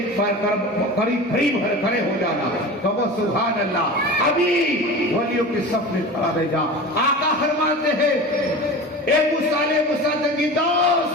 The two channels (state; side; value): normal; both; correlation 0.33